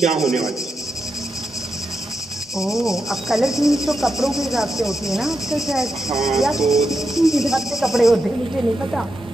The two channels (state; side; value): normal; both; correlation 0.86